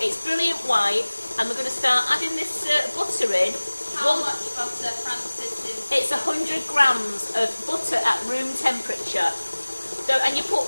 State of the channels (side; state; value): both; inverted; correlation -1.00